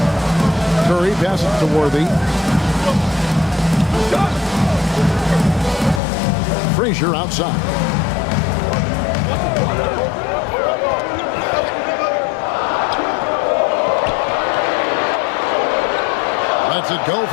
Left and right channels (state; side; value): drops out; right; at 6.0 s